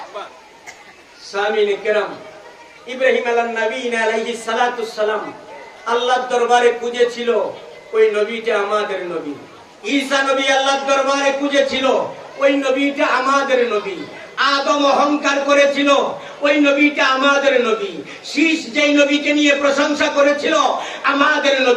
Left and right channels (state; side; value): identical; both; correlation 1.00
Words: সামিনে কেরাম, ইব্রাহিম আলাইহিস সালাতুস সালাম আল্লাহর দরবারে খুঁজেছিল, ওই নবীটা আমাদের নবী। ঈসা নবী আল্লাহর দরবারে খুঁজেছিল, ওই নবীটা আমাদের নবী। আদম অহংকার করেছিল, ওই নবীটা আমাদের নবী। শীষ যেই নবীকে নিয়ে প্রশংসা করেছিল, আমাদের